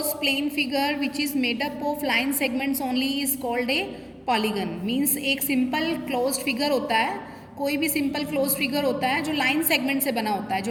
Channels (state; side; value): identical; both; correlation 1.00